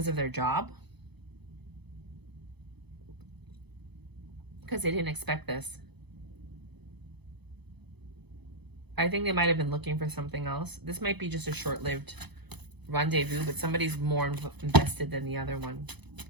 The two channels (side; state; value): left; late; 0.99 ms